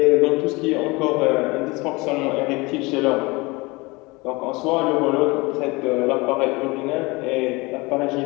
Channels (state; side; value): quieter; right; 24.2 dB